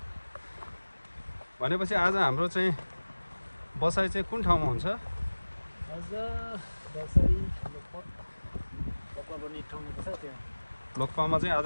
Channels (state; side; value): inverted; both; correlation -1.00